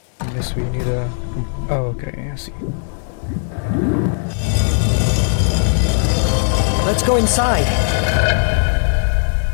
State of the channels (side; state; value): right; silent; digital silence